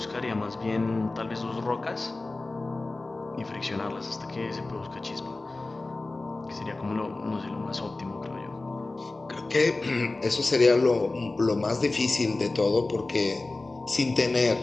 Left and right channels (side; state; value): right; quieter; 3.2 dB